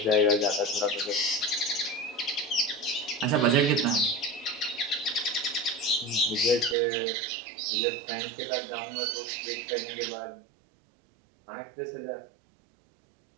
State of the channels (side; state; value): left; drops out; at 6.8 s